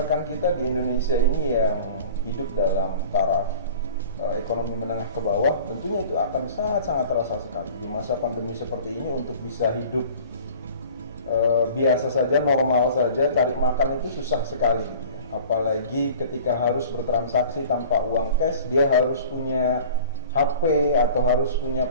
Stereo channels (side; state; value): both; inverted; correlation -0.44